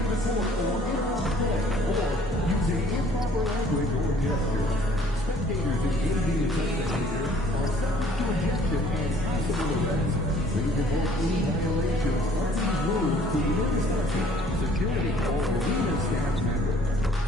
the court or interrupt play, or using improper language or gestures. Spectators engaging in such behavior are subject to ejection and possible arrest. Please report any violations of these rules to the infrastructure, security, or arena staff member.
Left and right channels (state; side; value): normal; both; correlation 0.58